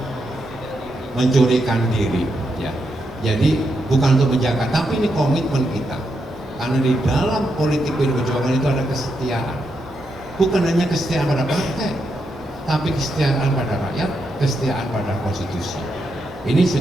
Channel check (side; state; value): both; normal; correlation 0.83